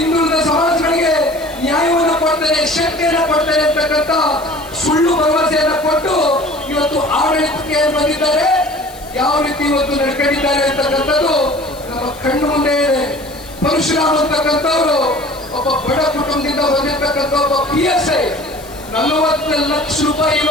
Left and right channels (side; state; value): left; noise; hiss, 20 dB below the sound